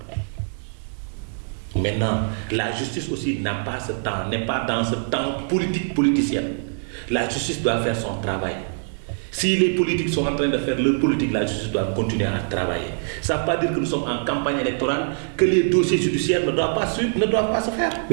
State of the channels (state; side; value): silent; left; digital silence